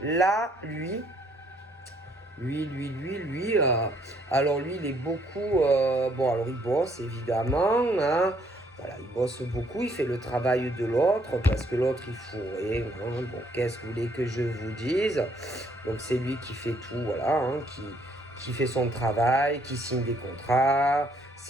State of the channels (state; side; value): normal; both; correlation 0.67